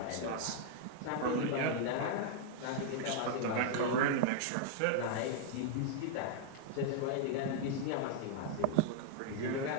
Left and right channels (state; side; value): different; both; correlation 0.00